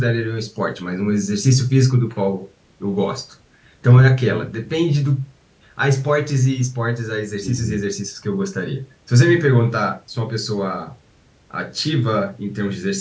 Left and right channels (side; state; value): both; identical; correlation 1.00